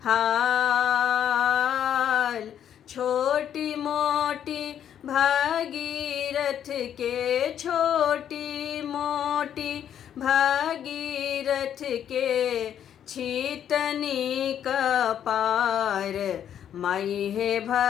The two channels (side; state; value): right; quieter; 9.6 dB